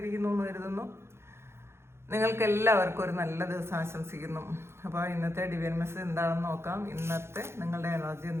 എന്ന് കരുതുന്നു. നിങ്ങൾക്ക് എല്ലാവർക്കും ഒരു നല്ല ദിവസം ആശംസിക്കുന്നു. അപ്പോൾ ഇന്നത്തെ ഡിവൈൻ മെസ്സേജ് എന്താണെന്ന് നോക്കാം. ഇന്നത്തെ നിങ്ങളുടെ എനർജി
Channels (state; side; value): late; left; 0.12 ms